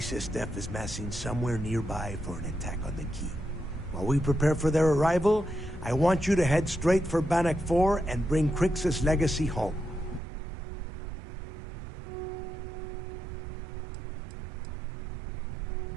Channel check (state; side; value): drops out; left; at 10.2 s